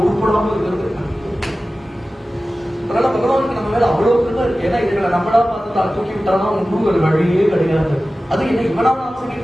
உருப்படாம இருக்கிறது. அதனால பகவானுக்கு நம்ம மேல அவ்வளவு கிருபை இருக்கு. ஏன்னா இதுகளை நம்மளா பார்த்து தூக்கி விட்டானா ஒன்றும் ஒரு வழியே கிடையாது. அது என்ன இவனா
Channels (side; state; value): both; normal; correlation 0.95